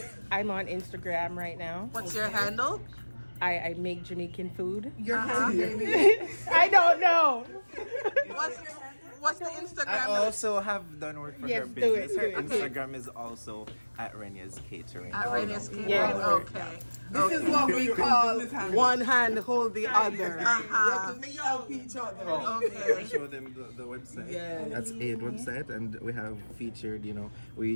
I'm on Instagram right now. What's your handle? I make Jamaican food. Your hand, baby. I don't know. What's the Instagram? I also have done work for Yes, her do business. it, Her do it. Instagram is also @Renya's Catering. At Radius Catering. Yes. Okay. This is what we call one hand hold the other. We Uh-huh. have to help each other. I Okay. show them the website. Yes. That's Aid website, and we have featured.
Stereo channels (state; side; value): inverted; both; correlation -1.00